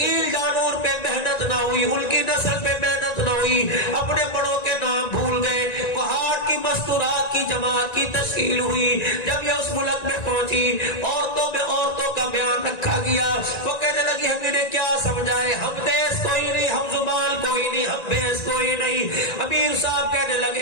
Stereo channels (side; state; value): right; late; 1.9 ms